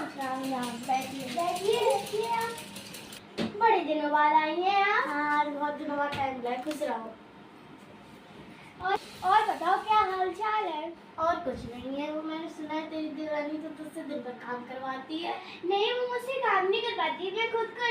राम राम। बैठिए बैठिए बैठिए। आप बड़े दिनों बाद आई हैं आप। हाँ बहुत दिनों बाद टाइम मिला है, खुश रहो। और बताओ क्या हाल चाल है? और कुछ नहीं है, वो मैंने सुना है तेरी देवरानी तो तुझसे दिन भर काम करवाती है। नहीं वो मुझसे काम नहीं करवाती, मैं खुद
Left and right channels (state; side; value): identical; both; correlation 1.00